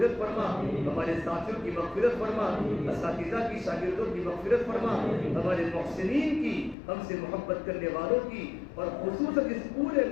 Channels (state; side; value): drops out; right; at 6.8 s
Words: فرما, ہمارے ساتھیوں کی مغفرت فرما, اساتذہ کی شاگردوں کی مغفرت فرما, ہمارے محسنین کی, ہم سے محبت کرنے والوں کی, اور خصوصاً اس پورے